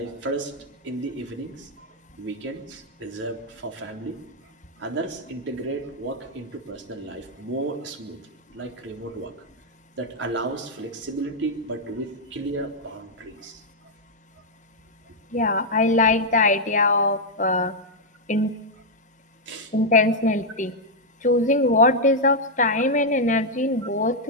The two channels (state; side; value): normal; both; correlation -0.03